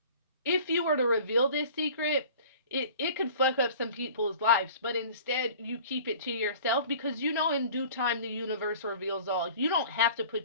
if you were to reveal this secret, it could fuck up some people's lives. But instead, you keep it to yourself, because in due time the universe reveals all. You don't have to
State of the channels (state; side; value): inverted; both; correlation -0.45